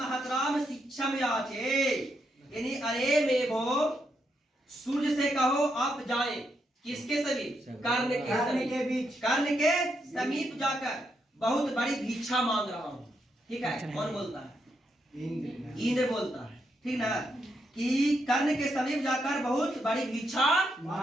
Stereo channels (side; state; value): both; normal; correlation 0.80